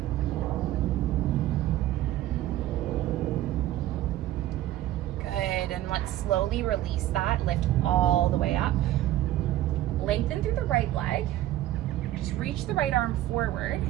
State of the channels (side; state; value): left; quieter; 14.2 dB